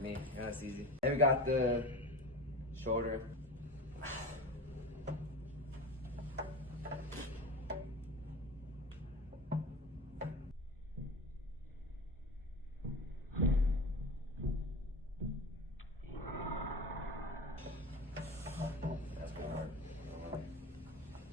Yeah, that's easy. Then we got the shoulder. That's pretty hard.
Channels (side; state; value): both; normal; correlation 0.31